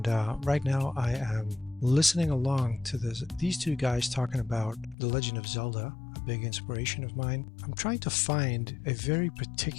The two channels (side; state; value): right; drops out; at 5.0 s